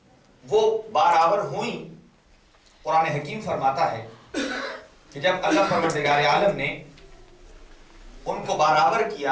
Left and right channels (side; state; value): both; identical; correlation 1.00